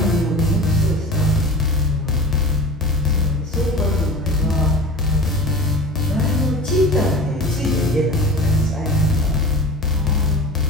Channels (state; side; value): normal; both; correlation 0.36